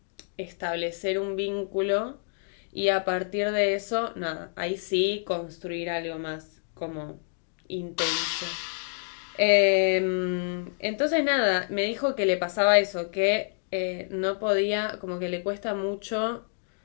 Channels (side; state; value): right; silent; digital silence